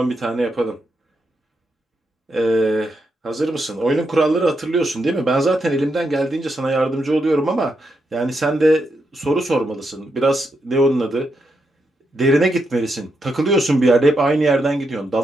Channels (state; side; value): normal; both; correlation 0.82